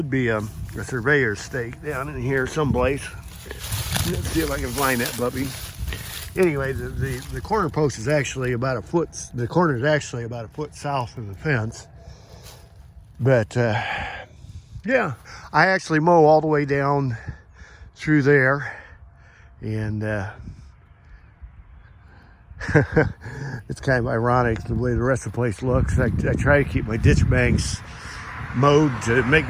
be a surveyor's stake down in here someplace. Let's see if I can find that puppy. Anyway, the corner post is actually about a foot. The corner is actually about a foot south of the fence. But yeah, I actually mow all the way down through there, and it's kind of ironic the way the rest of the place looks. I try to keep my ditch banks mowed to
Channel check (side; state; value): both; identical; correlation 1.00